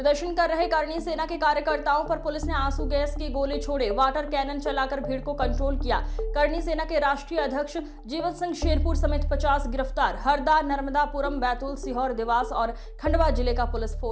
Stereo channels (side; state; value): both; identical; correlation 1.00